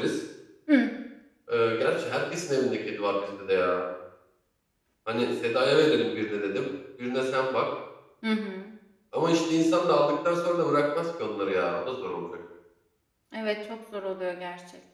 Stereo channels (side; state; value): both; identical; correlation 1.00